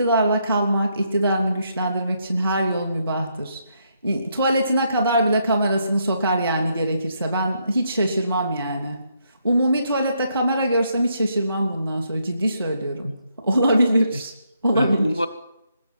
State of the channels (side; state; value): both; inverted; correlation -0.76